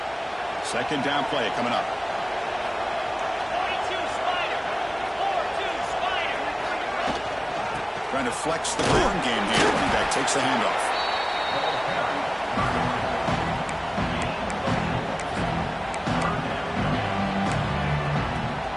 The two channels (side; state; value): both; identical; correlation 1.00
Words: Second down play coming up. Trying to flex the ground game here. Running back takes the handoff.